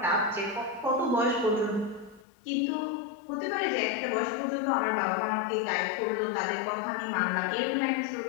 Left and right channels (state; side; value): drops out; right; at 2.2 s